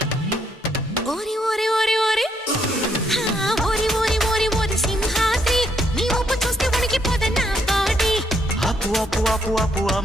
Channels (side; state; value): both; normal; correlation 0.73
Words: ఓరి ఓరి ఓరి ఓరి ఓరి ఓరి ఓరి ఓరి సింహాద్రి నీ ఊపు చూస్తే వణికిపోదా నా బాడీ ఆపు ఆపు ఆపు ఆపు